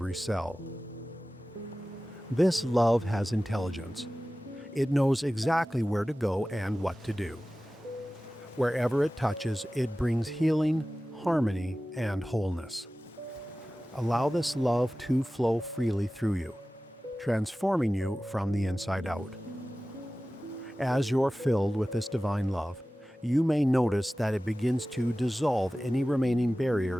cell. This love has intelligence. It knows exactly where to go and what to do. Wherever it touches, it brings healing, harmony, and wholeness. Allow this love to flow freely through you, transforming you from the inside out. As you're filled with this divine love, you may notice that it begins to dissolve any remaining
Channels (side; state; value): both; normal; correlation 0.96